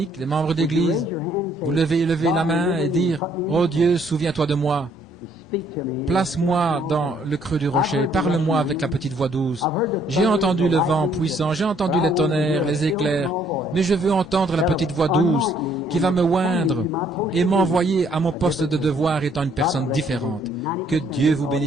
les membres d'église, vous levez la main et dire, « Oh Dieu, souviens-toi de moi. Place-moi dans le creux du rocher. Parle-moi avec la petite voix douce. J'ai entendu le vent puissant, j'ai entendu les tonnerres, les éclairs, mais je veux entendre la petite voix douce qui va me oindre et m'envoyer à mon poste de devoir étant une personne différente. Que Dieu vous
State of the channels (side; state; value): both; normal; correlation 0.65